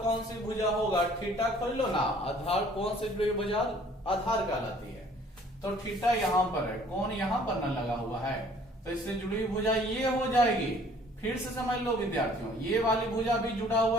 कौन सी भुजा होगा, थीटा खोल लो ना, आधार कौन सी भुजा आधार कहलाती है। तो थीटा यहां पर है, कौन यहां पर ना लगा हुआ है, तो इससे जुड़ी हुई भुजा ये हो जाएगी। फिर से समझ लो विद्यार्थियों, ये वाली भुजा भी जुड़ा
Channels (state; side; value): normal; both; correlation 0.56